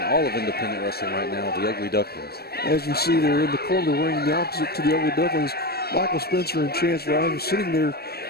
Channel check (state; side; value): late; right; 0.46 ms